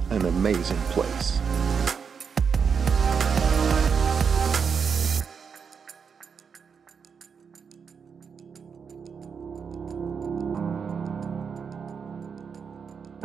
an amazing place.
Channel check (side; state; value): left; quieter; 6.2 dB